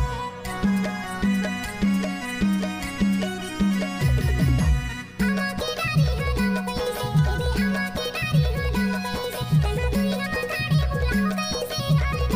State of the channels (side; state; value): both; identical; correlation 1.00